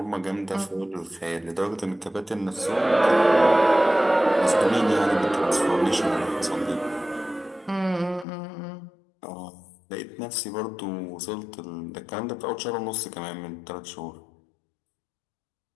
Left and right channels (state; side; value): drops out; right; at 8.2 s